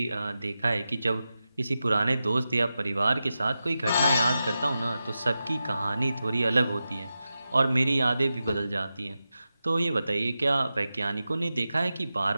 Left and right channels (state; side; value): inverted; both; correlation -0.92